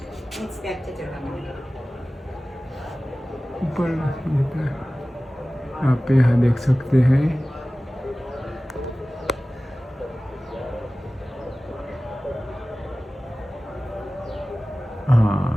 ऊपर आप यहाँ देख सकते हैं।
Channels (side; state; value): both; normal; correlation 0.97